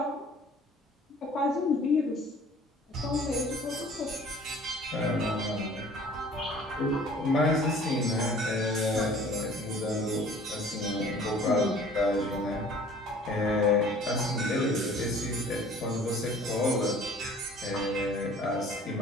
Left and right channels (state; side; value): normal; both; correlation 0.50